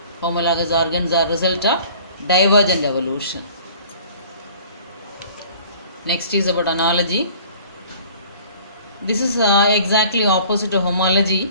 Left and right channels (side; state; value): both; inverted; correlation -0.49